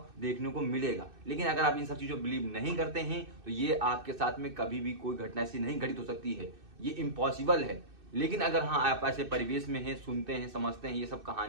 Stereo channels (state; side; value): late; left; 2.6 ms